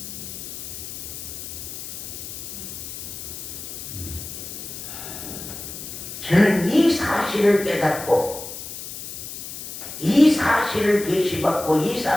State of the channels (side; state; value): left; noise; hiss, 9 dB below the sound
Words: 저는 이 사실을 깨닫고 이 사실을 계시받고 이